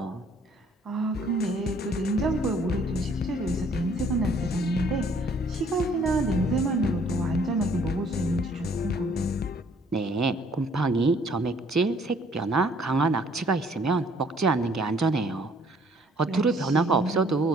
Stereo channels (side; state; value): both; normal; correlation 0.61